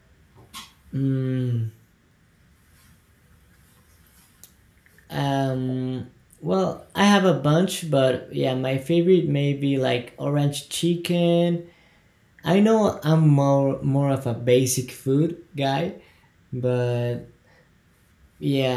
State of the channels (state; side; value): identical; both; correlation 1.00